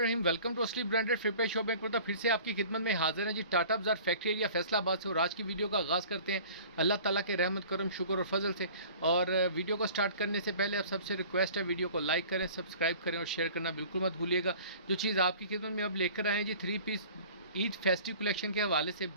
वेलकम टू असली ब्रांडेड फ्लिपकार्ट शॉप में फिर से आपकी खिदमत में हाजिर है जी। टाटा बाजार फैक्ट्री एरिया फैसलाबाद से। और आज की वीडियो का आगाज़ करते हैं अल्लाह ताला के रहमत करम शुक्र और फजल से। और वीडियो को स्टार्ट करने से पहले आप सबसे रिक्वेस्ट है, वीडियो को लाइक करें, सब्सक्राइब करें और शेयर करना बिल्कुल मत भूलिएगा। जो चीज़ आपकी खिदमत में अब लेकर आए हैं जी, 3 पीस ईद फेस्टिव कलेक्शन के हवाले से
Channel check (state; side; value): inverted; both; correlation -0.46